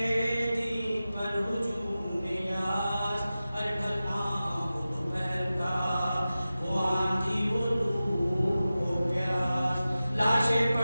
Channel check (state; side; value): inverted; both; correlation -0.95